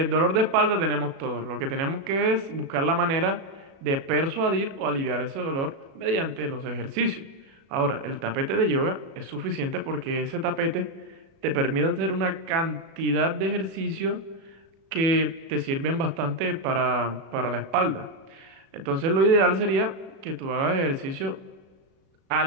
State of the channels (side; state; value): left; late; 36 ms